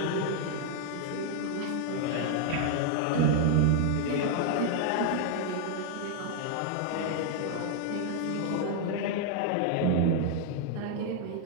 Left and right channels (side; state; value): both; different; correlation 0.00